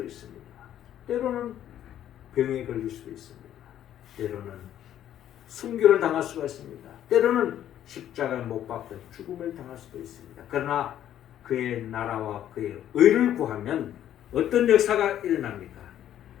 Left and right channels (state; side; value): quieter; right; 11.2 dB